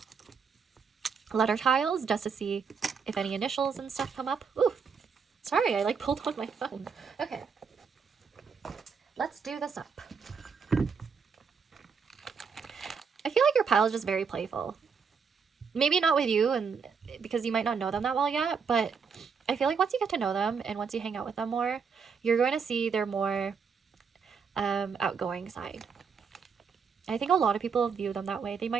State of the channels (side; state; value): left; quieter; 6.0 dB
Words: letter tiles just to see if any initials and stuff come up. Ooh, sorry, I like pulled on my phone. Okay, let's do this up. I feel like your pile is just very playful. Maybe not with you, and because you might not know them that well yet, but I feel like once you get to know them and once you hang out with them more, you're going to see their more outgoing side. I think a lot of people view them that way. They